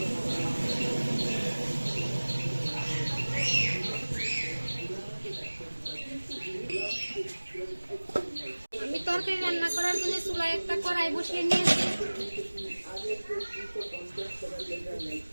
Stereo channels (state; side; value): inverted; both; correlation -1.00